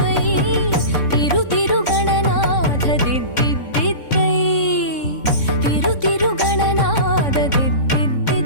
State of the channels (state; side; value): late; right; 3.6 ms